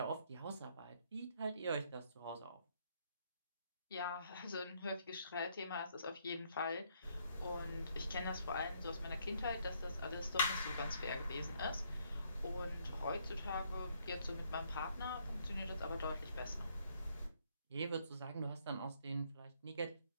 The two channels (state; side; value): inverted; both; correlation -0.70